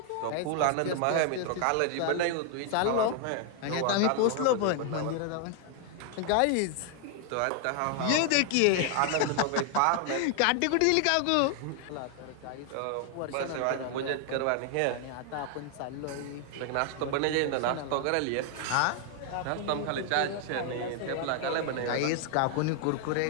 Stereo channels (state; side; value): different; both; correlation 0.00